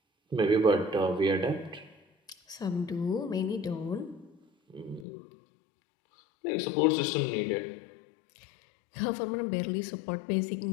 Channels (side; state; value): right; drops out; at 5.1 s